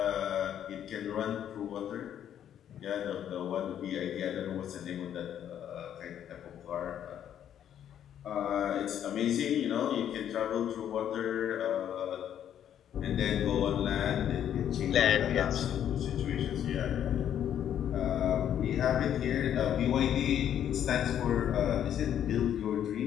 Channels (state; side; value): quieter; right; 10.0 dB